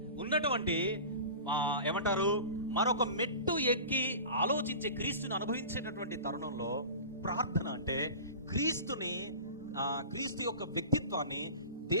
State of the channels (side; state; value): both; inverted; correlation -0.36